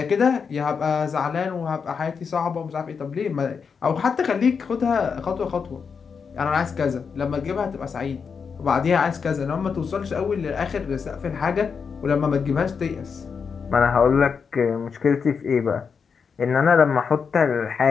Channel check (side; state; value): right; quieter; 5.9 dB